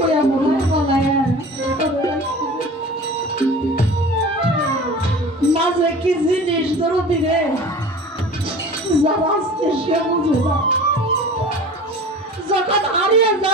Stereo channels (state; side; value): normal; both; correlation 0.39